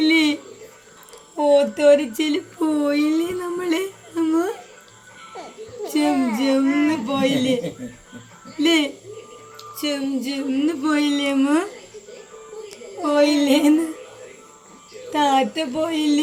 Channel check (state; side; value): identical; both; correlation 1.00